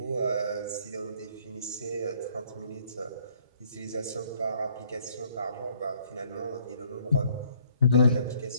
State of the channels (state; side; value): inverted; both; correlation -0.63